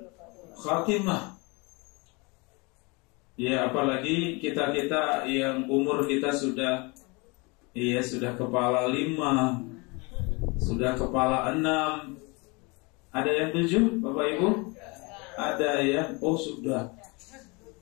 khatimah. Ya, apalagi kita yang umur kita sudah kepala 5, sudah kepala 6. Ada yang 7, Bapak Ibu? Ada ya? Oh sudah.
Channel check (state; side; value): quieter; right; 28.1 dB